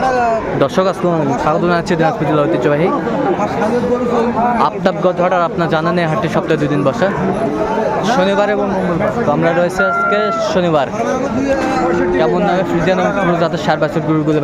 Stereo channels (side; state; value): both; identical; correlation 1.00